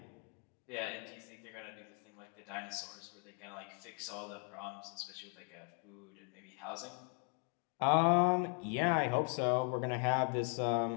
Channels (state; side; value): quieter; right; 39.5 dB